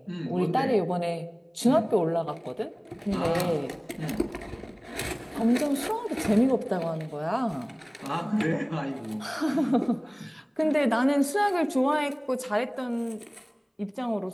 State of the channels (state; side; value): identical; both; correlation 1.00